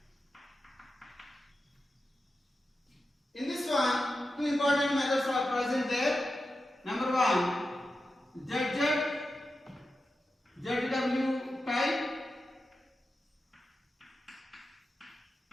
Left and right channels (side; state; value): both; normal; correlation 0.91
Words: In this one, two important methods are present there. Number 1, ZW type